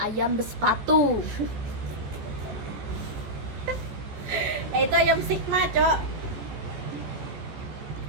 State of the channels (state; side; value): late; left; 14 ms